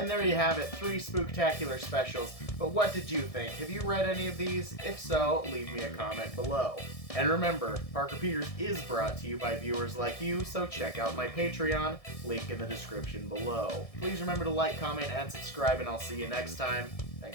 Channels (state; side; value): late; right; 1.6 ms